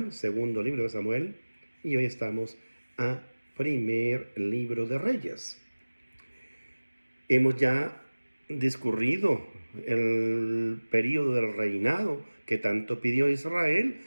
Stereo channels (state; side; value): inverted; both; correlation -1.00